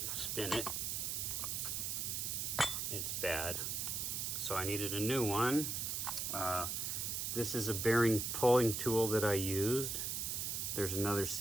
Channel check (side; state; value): right; noise; hiss, 1 dB below the sound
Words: spin it, it's bad. So I needed a new one. This is a bearing pulling tool that I used. There's another